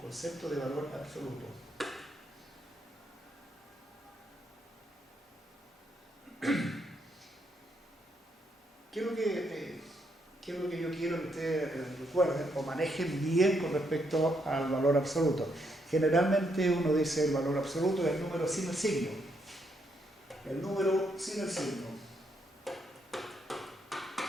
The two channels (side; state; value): both; normal; correlation 0.76